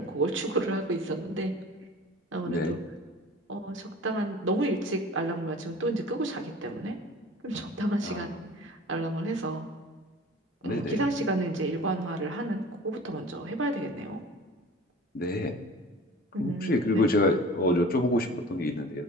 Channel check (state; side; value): normal; both; correlation 0.42